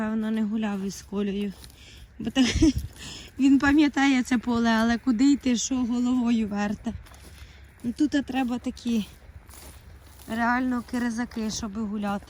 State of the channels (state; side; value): identical; both; correlation 1.00